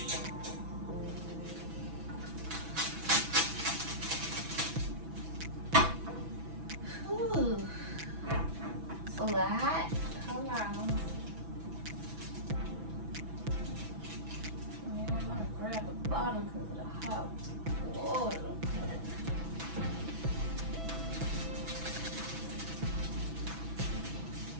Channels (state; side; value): late; left; 6.1 ms